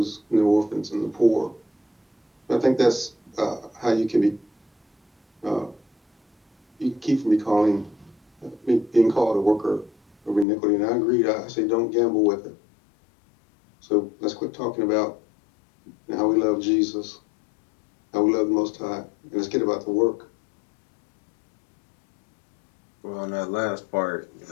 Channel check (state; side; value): drops out; right; at 10.5 s